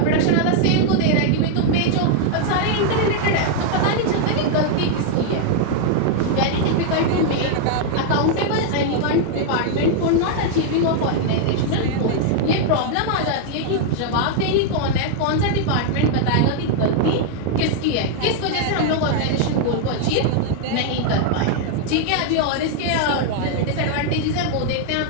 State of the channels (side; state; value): both; different; correlation 0.00